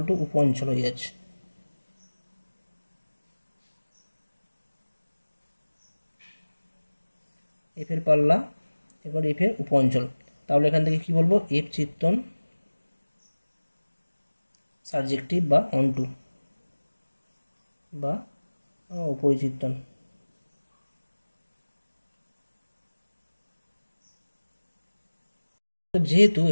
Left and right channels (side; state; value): both; inverted; correlation -1.00